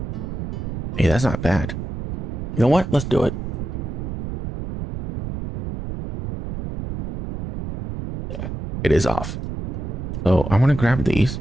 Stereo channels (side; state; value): right; noise; rumble, 6 dB below the sound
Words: Hey, that's not bad. You know what? Let's do it. Yeah, it is off. So I want to grab these.